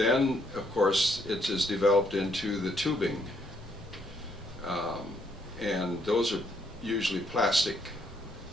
of course, it is developed into the tubing, and those are usually plastic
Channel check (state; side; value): normal; both; correlation 0.71